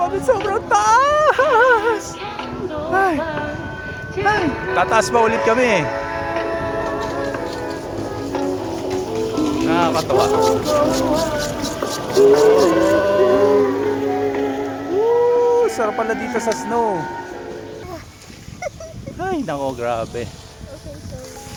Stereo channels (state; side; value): identical; both; correlation 1.00